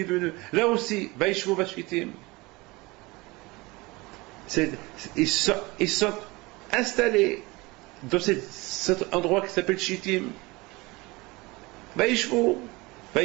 venu, là aussi, Vaishvu Bashitim. Ils sont installés dans cet endroit qui s'appelle Shittim. Vaishvu,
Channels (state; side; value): quieter; left; 23.3 dB